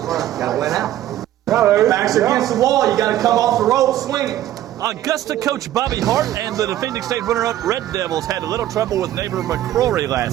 to win out. Backs against the wall. You got to come off the rope swinging. Augusta coach Bobby Hart and the defending state runner-up Red Devils had a little trouble with neighbor McCrory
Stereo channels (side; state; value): left; quieter; 13.1 dB